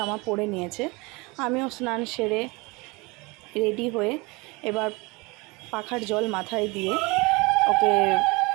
পরে নিয়েছে। আমিও স্নান সেরে রেডি হয়ে এবার পাখার জল মাথায় দিয়ে ওকে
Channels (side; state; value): left; quieter; 25.8 dB